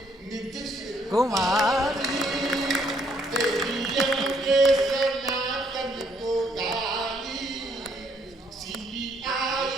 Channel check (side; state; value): both; normal; correlation 0.69